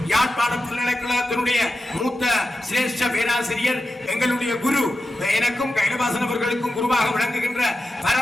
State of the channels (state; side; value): normal; both; correlation 0.91